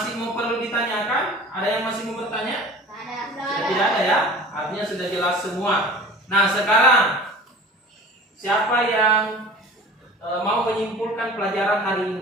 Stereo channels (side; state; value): both; normal; correlation 0.41